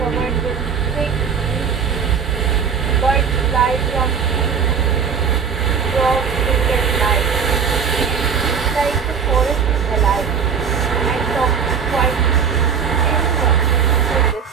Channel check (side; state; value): left; quieter; 6.6 dB